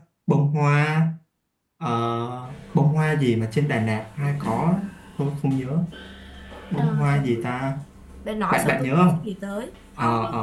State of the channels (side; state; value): both; identical; correlation 1.00